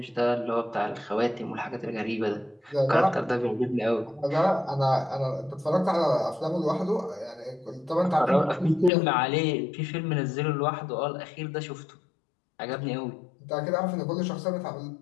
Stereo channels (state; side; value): drops out; right; at 8.9 s